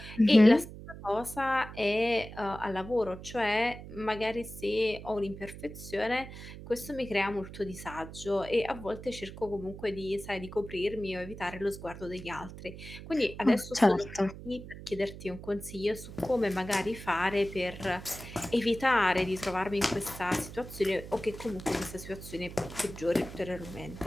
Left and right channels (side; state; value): right; noise; hum, 13 dB below the sound